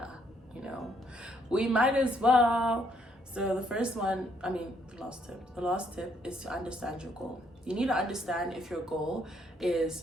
you know, we might as well. So the last tip is to understand your goal. You need to understand if your goal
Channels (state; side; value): normal; both; correlation 0.70